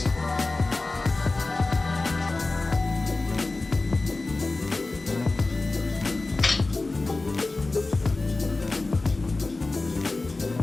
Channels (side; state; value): right; quieter; 3.3 dB